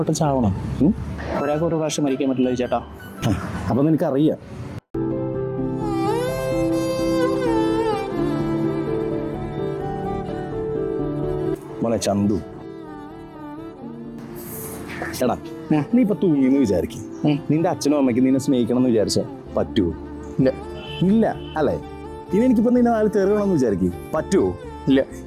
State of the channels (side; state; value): both; identical; correlation 1.00